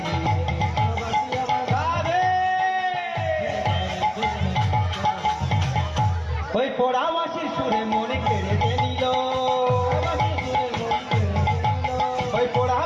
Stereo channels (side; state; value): both; identical; correlation 1.00